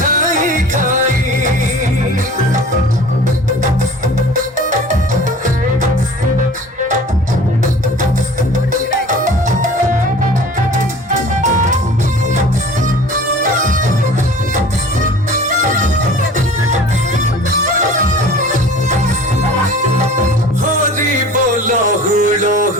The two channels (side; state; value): both; normal; correlation 0.44